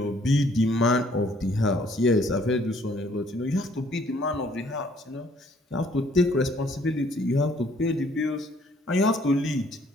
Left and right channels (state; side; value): normal; both; correlation 0.62